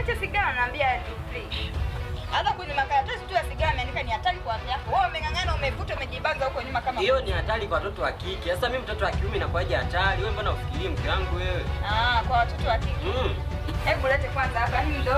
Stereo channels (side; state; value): both; identical; correlation 1.00